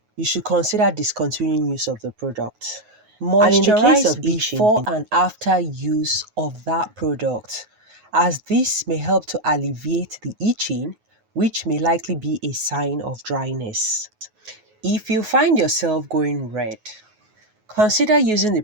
you should consider discontinuing use of the product. And in the case of Moisturize itching, before before and after use of that product, as this may help to alleviate the itching, which may likely be a sign of dryness. If you find yourself going red, consider using the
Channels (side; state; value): left; late; 9.4 ms